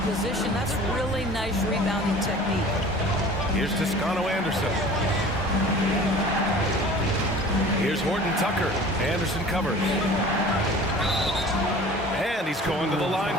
position. That's really nice rebounding technique. Here's Toscano Anderson. Here's Horton Tucker. Anderson covers. And he's going to the line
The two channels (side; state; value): both; normal; correlation 0.43